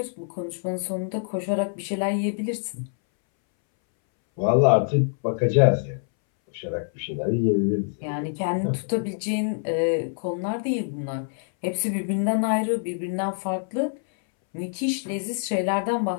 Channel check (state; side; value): silent; right; 62 dB below the other